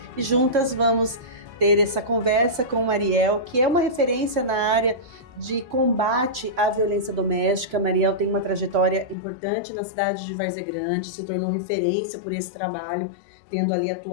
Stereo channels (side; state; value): right; drops out; at 9.2 s